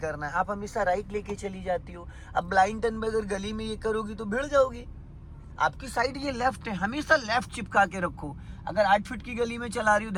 है, आप हमेशा राइट लेके चली जाती हो। अब ब्लाइंड टर्न में अगर गली में ये करोगी तो भिड़ जाओगी। आपकी साइड ये लेफ्ट है, हमेशा लेफ्ट चिपका के रखो। अगर 8 फीट की गली में चला रही हो,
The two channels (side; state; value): both; identical; correlation 1.00